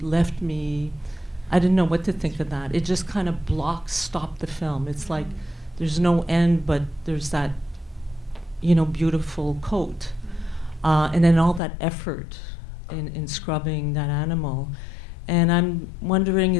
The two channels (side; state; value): right; drops out; at 11.6 s